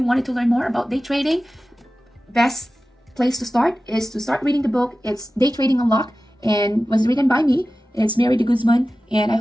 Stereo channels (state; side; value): normal; both; correlation 0.95